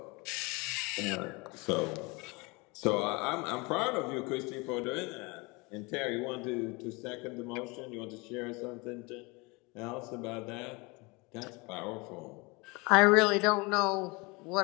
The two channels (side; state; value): right; quieter; 26.7 dB